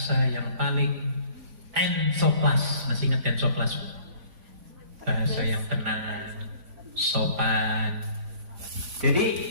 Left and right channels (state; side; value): late; left; 3.5 ms